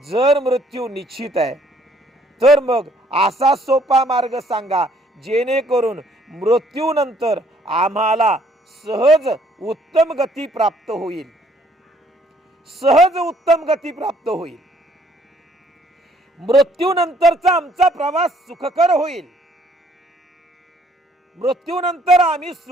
मृत्यू निश्चित आहे तर मग असा सोपा मार्ग सांगा जेणेकरून मृत्यूनंतर आम्हाला सहज उत्तम गती प्राप्त होईल, सहज उत्तम गती प्राप्त होईल, मृत्यूनंतरचा आमचा प्रवास सुखकर होईल, मृत्यूनंतर आम्ही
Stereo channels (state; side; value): normal; both; correlation 0.63